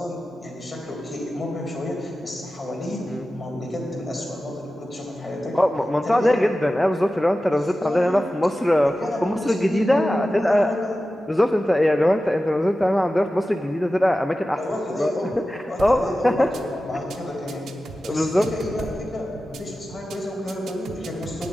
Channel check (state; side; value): normal; both; correlation 0.94